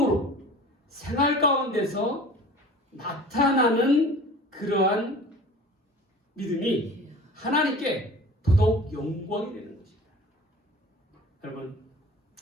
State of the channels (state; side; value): normal; both; correlation 0.42